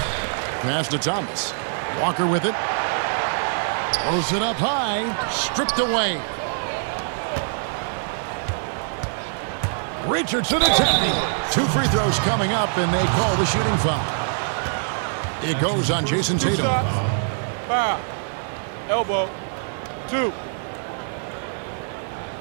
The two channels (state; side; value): silent; left; digital silence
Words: Pass to Thomas. Walker with it. Throws it up high. Stripped away. Richardson attempting. 2 free throws coming up, and they call the shooting foul. It goes on Jason Tatum. Foul. Elbow. 2.